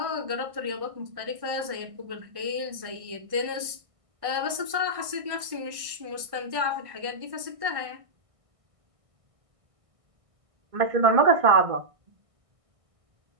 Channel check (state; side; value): late; left; 1.6 ms